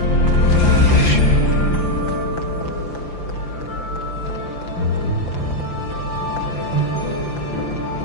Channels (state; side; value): late; right; 5.9 ms